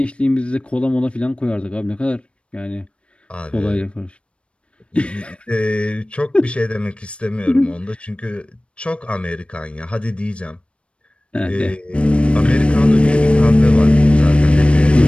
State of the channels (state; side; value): late; right; 0.059 ms